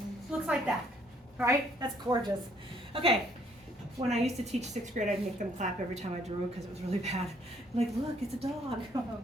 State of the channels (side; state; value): both; normal; correlation 0.65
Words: looks like that, right? That's gorgeous. Okay, when I used to teach 6th grade, I'd make them clap every time I drew because it was really bad. I'm like, look, it's a dog. Oh,